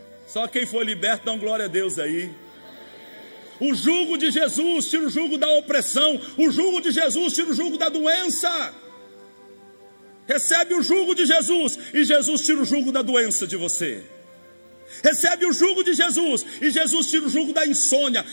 Só quem foi liberto, dá glória a Deus aí. O jugo de Jesus tira o jugo da opressão, o jugo de Jesus tira o jugo da doença. Recebe o jugo de Jesus e Jesus tira o jugo da doença de você. Recebe o jugo de Jesus e Jesus tira o jugo da insônia,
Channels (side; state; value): both; inverted; correlation -1.00